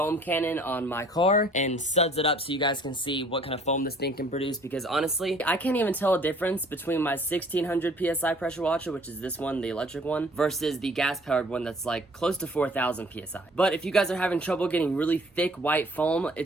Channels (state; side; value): normal; both; correlation 0.55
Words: cannon on my car and suds it up so you guys can see what kind of foam this thing can produce, because honestly, I can't even tell a difference between my 1600 PSI pressure washer, which is this one, the electric one, versus the gas-powered one that's like close to 4000 PSI. But if you guys are having trouble getting really thick white foam,